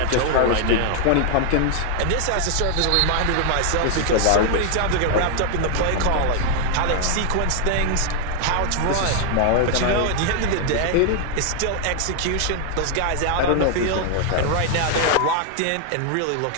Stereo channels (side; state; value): both; different; correlation 0.00